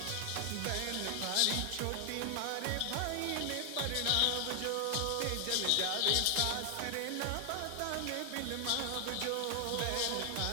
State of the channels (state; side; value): different; both; correlation 0.00